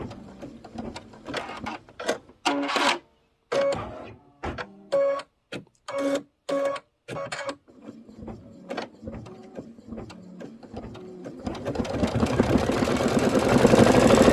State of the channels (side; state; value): both; identical; correlation 1.00